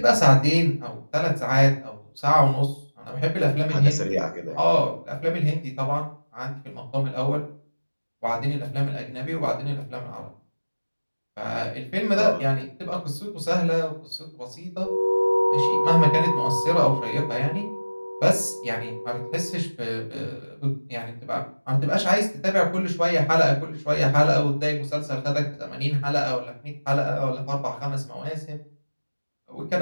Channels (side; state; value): both; inverted; correlation -1.00